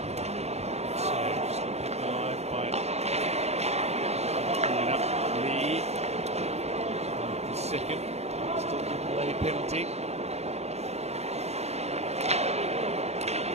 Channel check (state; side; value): late; left; 0.31 ms